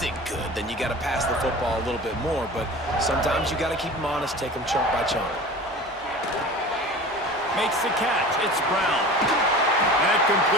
good, then you got to pass the football a little bit more. But sometimes you got to keep them honest, take them chunk by chunk. Makes the catch. It's Brown. That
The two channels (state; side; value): normal; both; correlation 0.37